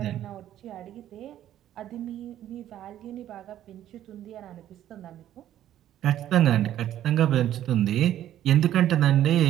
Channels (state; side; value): quieter; left; 11.9 dB